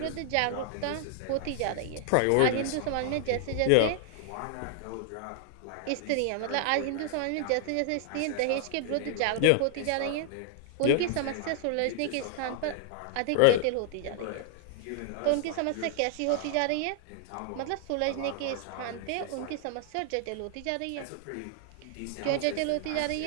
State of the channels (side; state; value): both; different; correlation 0.00